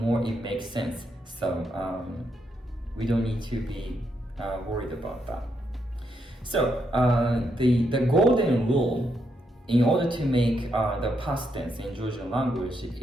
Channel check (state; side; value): normal; both; correlation 0.79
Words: it makes sense. So we don't need to be worried about that. So the golden rule in order to make the past tense in Georgian language